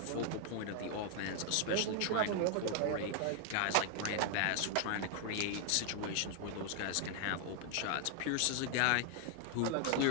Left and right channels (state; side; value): different; both; correlation 0.00